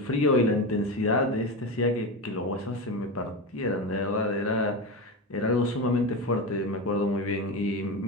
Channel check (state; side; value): normal; both; correlation 0.20